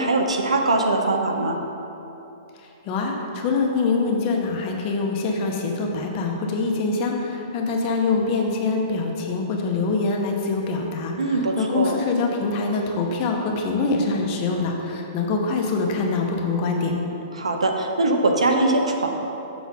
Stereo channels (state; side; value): inverted; both; correlation -0.41